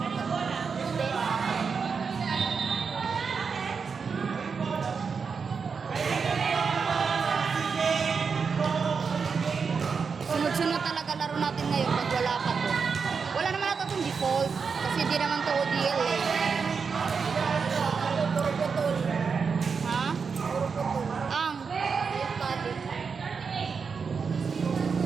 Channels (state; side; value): quieter; left; 5.6 dB